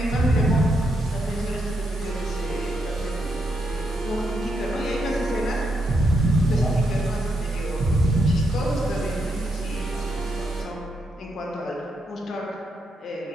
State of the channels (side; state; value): both; normal; correlation 0.80